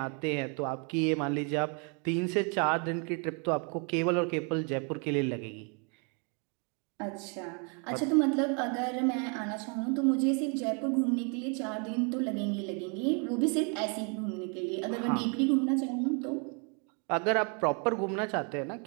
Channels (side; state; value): left; quieter; 36.7 dB